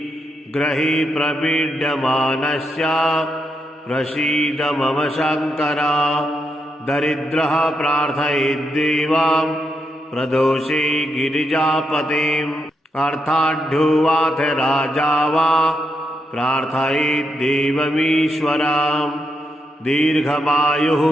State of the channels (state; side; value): normal; both; correlation 0.82